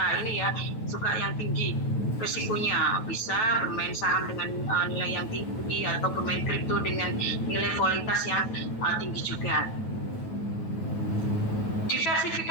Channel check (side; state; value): right; late; 9.2 ms